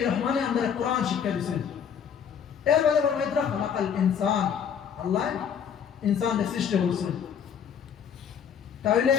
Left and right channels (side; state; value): right; quieter; 7.8 dB